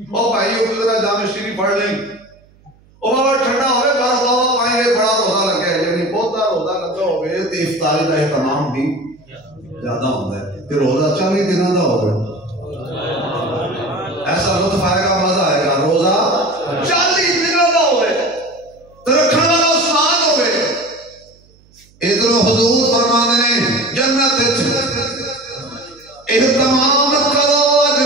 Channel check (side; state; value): right; noise; hum, 30 dB below the sound